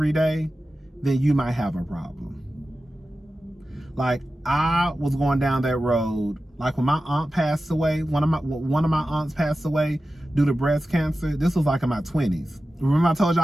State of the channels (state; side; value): normal; both; correlation 0.94